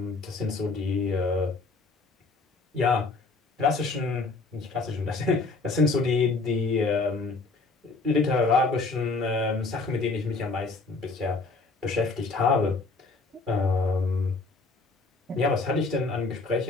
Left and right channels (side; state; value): right; quieter; 3.8 dB